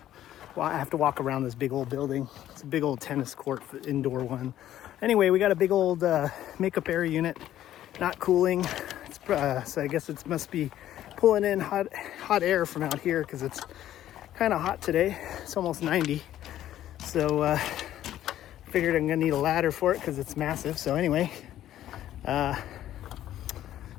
I have to walk around this big old building. It's a big old tennis court, indoor one. Anyway, we got a big old makeup air unit, not cooling. It's, so I guess it must be pulling in hot air from out here because it's kind of hot today. It's almost 90. So figured I'm gonna need a ladder for it because it's massive. So anyway, there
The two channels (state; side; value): quieter; right; 12.5 dB